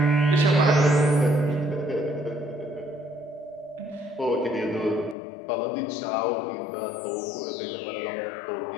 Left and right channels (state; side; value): drops out; right; at 5.2 s